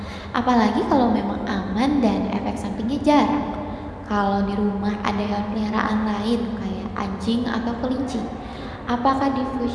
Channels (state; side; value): identical; both; correlation 1.00